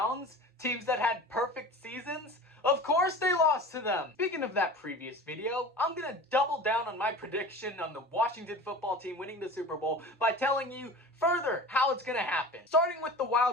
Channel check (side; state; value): both; normal; correlation 0.36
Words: teams that had perfect seasons? Of course they lost to them! Speaking of that previous video, I'm gonna double down on my prediction on the Washington football team winning the Super Bowl by telling you further how it's gonna happen. Starting with the